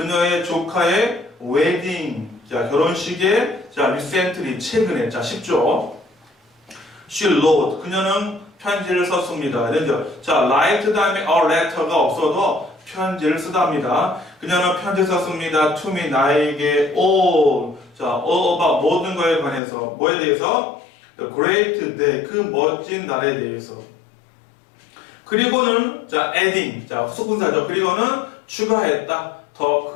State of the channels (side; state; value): right; drops out; at 19.6 s